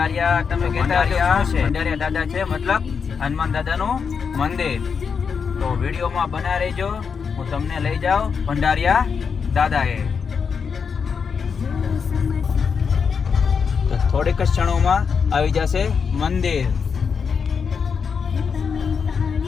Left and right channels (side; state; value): right; quieter; 6.1 dB